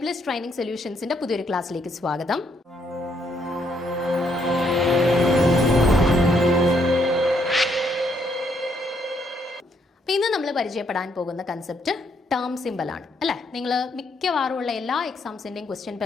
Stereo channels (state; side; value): normal; both; correlation 0.73